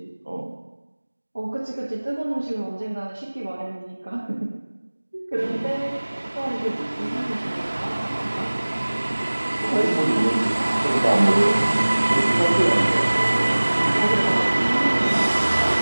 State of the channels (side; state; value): both; inverted; correlation -1.00